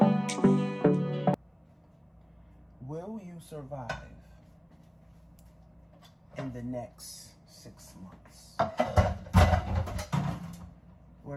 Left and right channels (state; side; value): identical; both; correlation 1.00